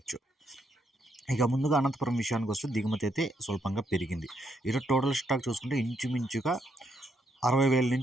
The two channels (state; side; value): normal; both; correlation 0.76